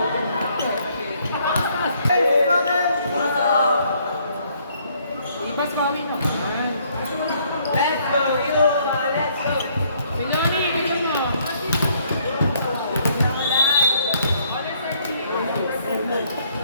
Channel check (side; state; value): both; inverted; correlation -0.66